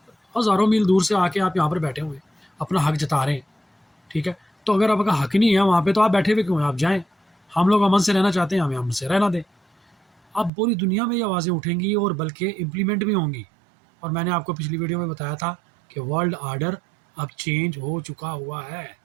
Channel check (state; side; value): drops out; left; at 10.5 s